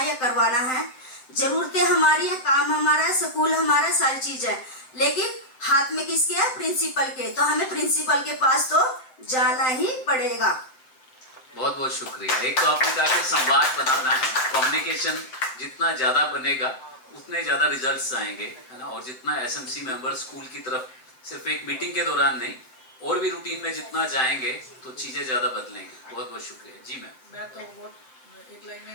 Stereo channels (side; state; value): right; late; 7.8 ms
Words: या करवाना है, जरूरतें हमारी है, काम हमारा है, स्कूल हमारा, सारी चीज है, लेकिन हाथ में किसके है? प्रिंसिपल के। तो हमें प्रिंसिपल के पास तो जाना ही पड़ेगा। बहुत बहुत शुक्रिया। एक तो आपने कहा कि संवाद बनाना है, कम्युनिकेशन जितना ज्यादा बनेगा उतने ज्यादा रिजल्ट्स आएंगे, है ना। और जितना एसएमसी मेंबर स्कूल की तरफ सिर्फ एक मीटिंग के दौरान नहीं और भी रूटीन में जितना जाएंगे तो चीजें ज्यादा बदलेंगी। बहुत बहुत शुक्रिया जी। मैं तो वो एक लाइन